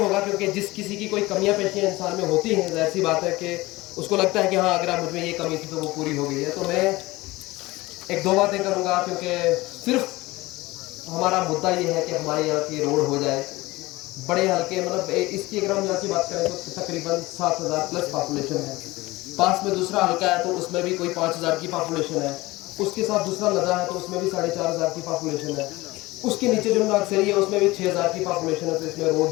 क्योंकि जिस किसी की कोई कमियां पेशियां इंसान में होती हैं, ज़ाहिर सी बात है कि उसको लगता है कि हाँ अगर मुझ में ये कमी थी तो वो पूरी हो गई है। तो मैं एक दो बातें करूँगा, क्योंकि सिर्फ हमारा मुद्दा ये है कि हमारे यहाँ की रोड हो जाए। बड़े हल्के मतलब इसकी अगर हम यहाँ की बात करें तो तकरीबन 7,000 प्लस पॉपुलेशन है। पास में दूसरा हल्का है तो उसमें भी कोई 5,000 की पॉपुलेशन है। उसके साथ दूसरा लदा है तो उसमें भी 4,500 की पॉपुलेशन है। उसके नीचे जो नागसरी है उसमें भी 6,000 की पॉपुलेशन है। तो इसमें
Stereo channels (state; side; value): quieter; right; 20.3 dB